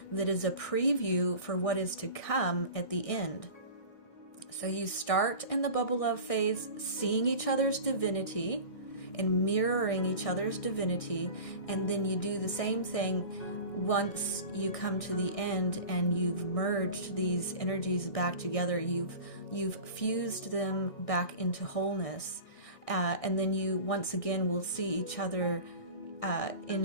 that is a preview for what is to come at the end. So you start in the bubble love phase seeing each other's divinity and mirroring each other's divinity, and then you do the same thing once you come to the end and you've merged these energies back together. You've fused them back into wholeness, and then you once again will see each other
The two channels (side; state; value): right; late; 1.6 ms